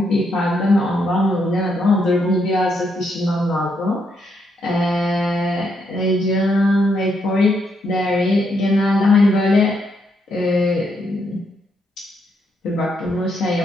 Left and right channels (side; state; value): both; normal; correlation 0.77